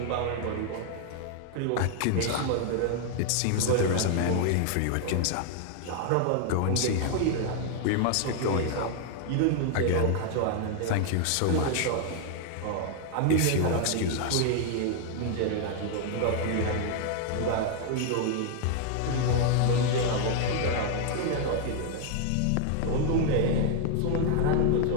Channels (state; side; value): different; both; correlation 0.00